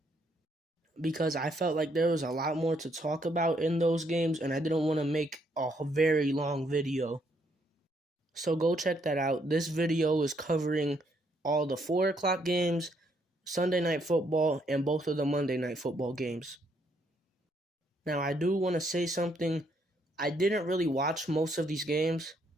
because I felt like there was a lot more to talk about in those games and I didn't want to make a very long video. So go check that out. This video is covering all the 4 o'clock games, Sunday Night Football, and both of the Monday Night Football games. Now, I do want to say something. I didn't really watch most of these games.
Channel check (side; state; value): both; normal; correlation 0.72